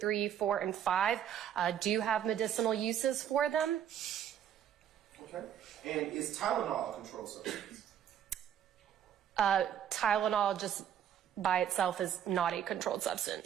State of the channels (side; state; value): left; quieter; 9.7 dB